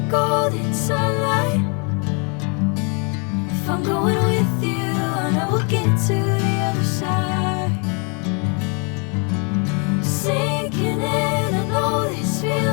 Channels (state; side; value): quieter; right; 36.4 dB